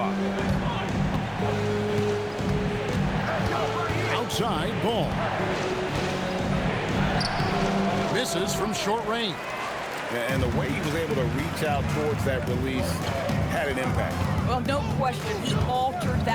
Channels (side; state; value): both; identical; correlation 1.00